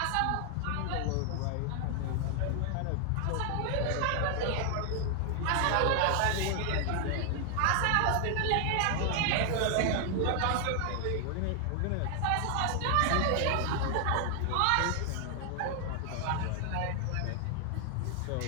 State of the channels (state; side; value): different; both; correlation 0.00